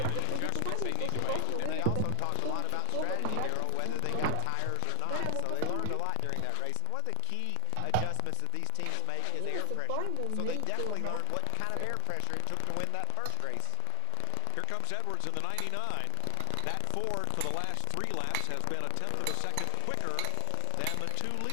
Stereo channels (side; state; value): both; different; correlation 0.00